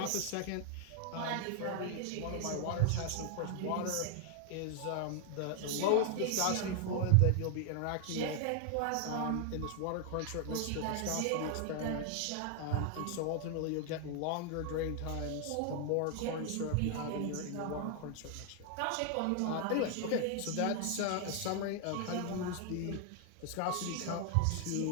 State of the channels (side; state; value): both; different; correlation 0.00